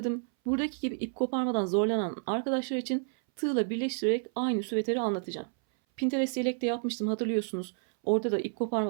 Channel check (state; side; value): silent; left; 58 dB below the other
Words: Buradaki gibi ip koparmadan zorlanan arkadaşlar için tığla birleştirerek aynı süveteri anlatacağım. Pinterest yelekte yapmıştım hatırlıyorsunuz. Orada da ip